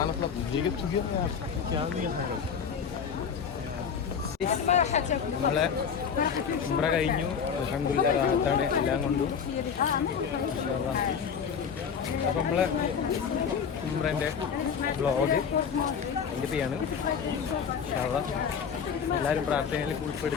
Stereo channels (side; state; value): right; quieter; 6.9 dB